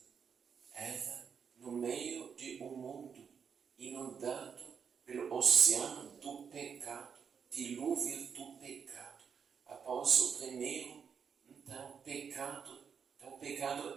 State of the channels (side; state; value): left; quieter; 6.7 dB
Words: Ela, no meio de um mundo inundado pelo oceano do pecado, dilúvio do pecado, após o primeiro, então, pecado, o